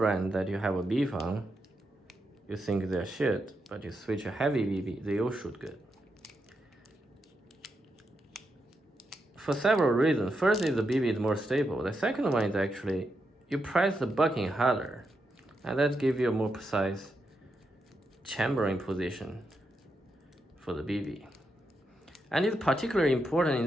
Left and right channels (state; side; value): normal; both; correlation 0.84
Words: that you have a beef on, you think they're shit, but you switch a heavy BB, they all shoot good. For several reasons. First is the BB is more stable. The second one is actually you press the bucking harder, and that gives you a more precise chambering position for the BB. And it's particularly important in